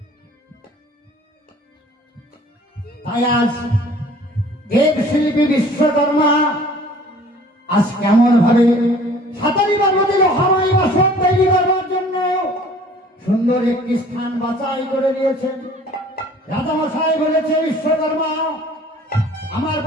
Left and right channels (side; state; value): both; normal; correlation 0.51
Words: তাই আজ দেবশিল্পী বিশ্বকর্মা আজ কেমন ভাবে সাতারি পর্বতে লোহাময় বাসন তৈরি করবার জন্য সুন্দর একটি স্থান বাছাই করে দিয়েছেন। রাজামশাই বলেছে, বিশ্বকর্মা আমার